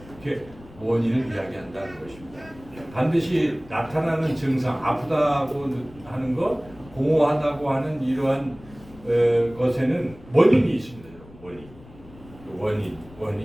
이렇게 원인을 이야기한다는 것입니다. 반드시 나타나는 증상, 아프다고 하는 것, 공허하다고 하는 이러한 것에는 원인이 있습니다.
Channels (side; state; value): left; noise; rumble, 21 dB below the sound